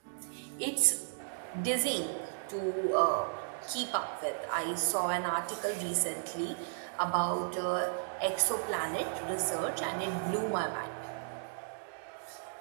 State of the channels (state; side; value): silent; left; digital silence